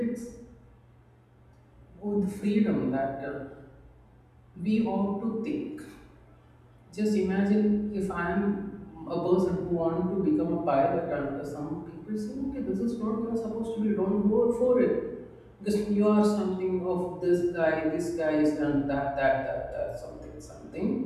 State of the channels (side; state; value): both; identical; correlation 1.00